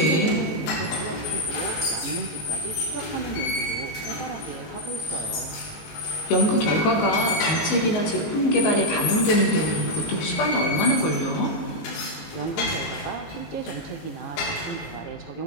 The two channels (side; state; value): right; late; 19 ms